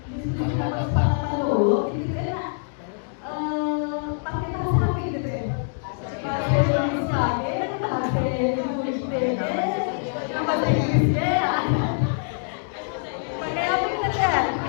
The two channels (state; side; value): silent; right; digital silence